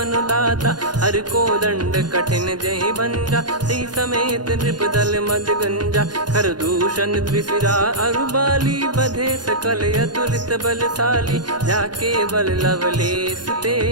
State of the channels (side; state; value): left; late; 0.70 ms